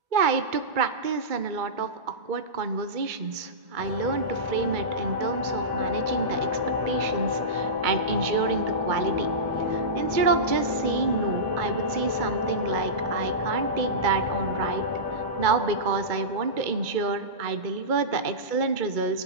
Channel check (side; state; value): left; late; 2.2 ms